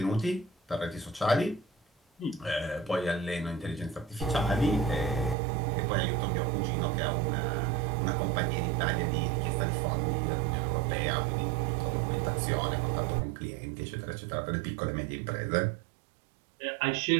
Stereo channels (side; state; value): left; drops out; at 5.4 s